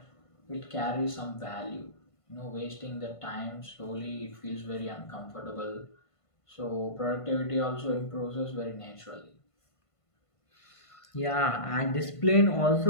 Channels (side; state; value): right; late; 1.5 ms